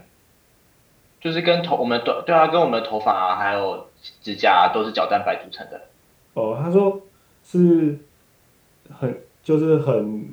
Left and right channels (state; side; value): identical; both; correlation 1.00